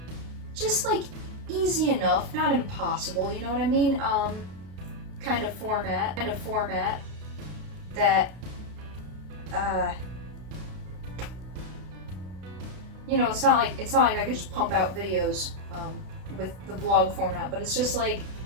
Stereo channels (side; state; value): left; late; 32 ms